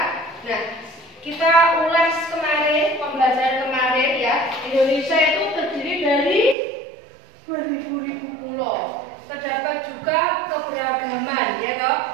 Nah, kita ulas kemarin, pembelajaran kemarin ya. Indonesia itu terdiri dari beribu-ribu pulau. Terdapat juga keberagaman, ya toh,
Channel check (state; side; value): drops out; left; at 6.6 s